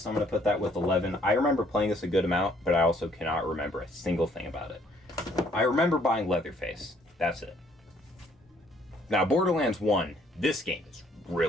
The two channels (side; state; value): both; normal; correlation 0.64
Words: I'm going to put that with 11. I remember playing this a good amount, but I also cannot remember a single thing about it. I remember buying Leatherface. That's it. Now, Borderlands 1, this game is